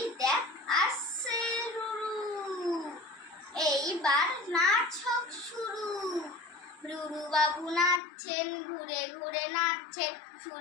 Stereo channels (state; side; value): drops out; right; at 8.0 s